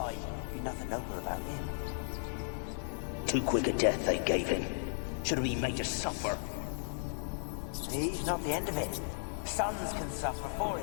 Be nothing noble about him. Too quick a death they gave him. Should have been made to suffer. He's not the end of it. Sons can suffer for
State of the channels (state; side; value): silent; right; digital silence